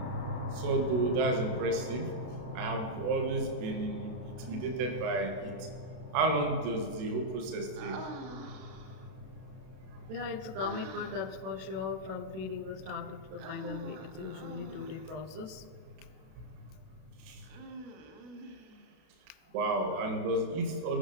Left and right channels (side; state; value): left; late; 32 ms